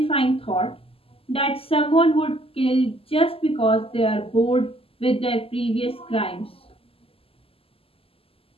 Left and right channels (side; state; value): right; late; 0.27 ms